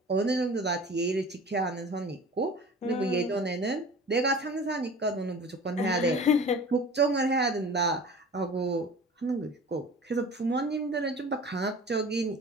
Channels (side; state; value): both; normal; correlation 0.40